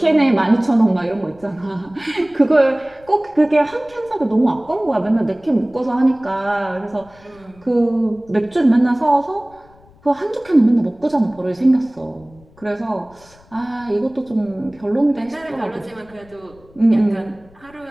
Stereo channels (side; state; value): left; noise; rumble, 27 dB below the sound